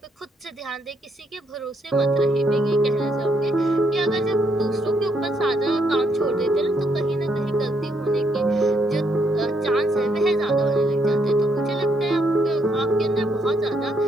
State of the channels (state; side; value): normal; both; correlation 0.75